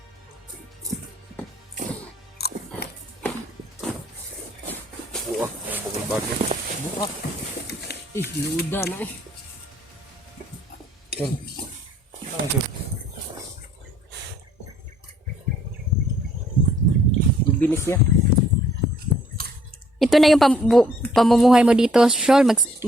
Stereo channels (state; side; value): normal; both; correlation 0.63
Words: Buah, ang bukol bagyo. Buka. Luda na eh. Tol. Ano tol? Bibilis niya. Ito na yung pamumuhay mo dito, Shol.